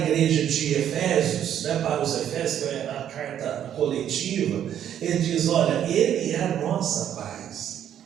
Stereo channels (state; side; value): quieter; left; 10.1 dB